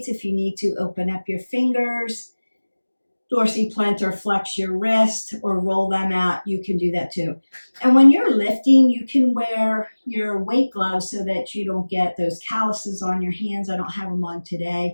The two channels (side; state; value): both; inverted; correlation -1.00